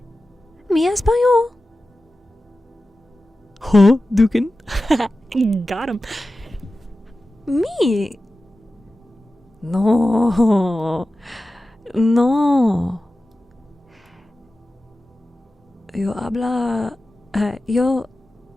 español. Huh, Dukin? Got him. Me. No. Yo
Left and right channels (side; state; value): both; normal; correlation 0.94